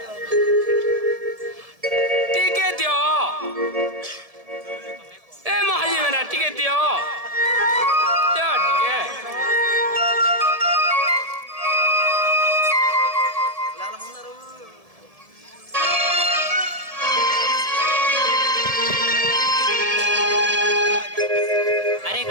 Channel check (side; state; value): left; late; 1.7 ms